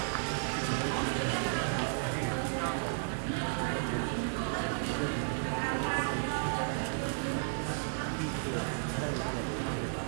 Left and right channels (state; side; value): silent; left; digital silence